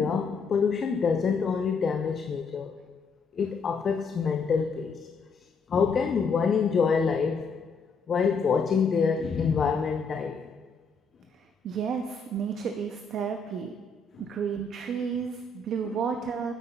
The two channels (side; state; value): right; quieter; 4.0 dB